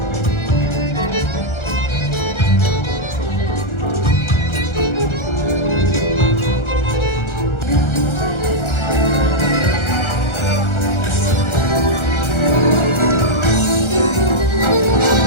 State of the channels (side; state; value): right; late; 1.4 ms